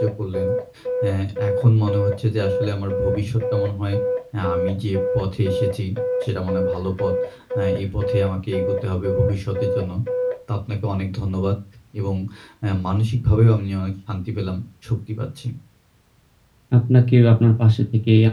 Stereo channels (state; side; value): identical; both; correlation 1.00